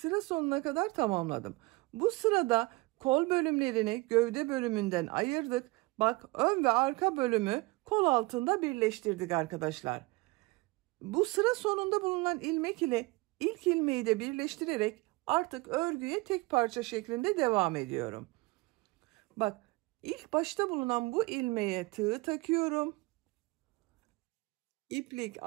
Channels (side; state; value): left; quieter; 23.9 dB